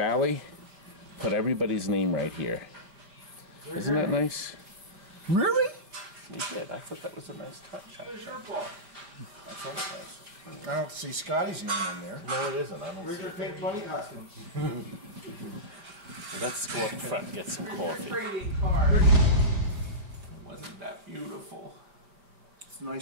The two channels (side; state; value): left; late; 4.9 ms